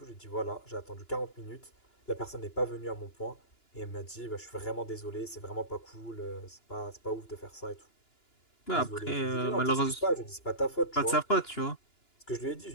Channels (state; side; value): late; right; 2.9 ms